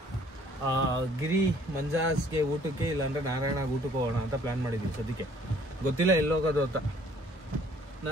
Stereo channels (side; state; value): both; normal; correlation 0.58